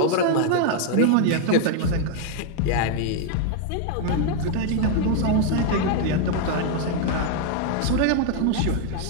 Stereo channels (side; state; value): both; different; correlation 0.00